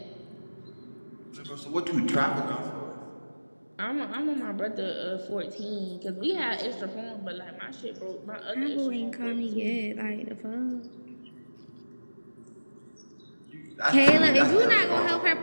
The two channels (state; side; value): inverted; both; correlation -1.00